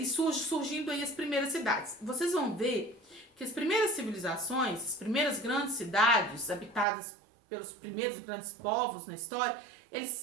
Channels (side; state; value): left; drops out; at 6.9 s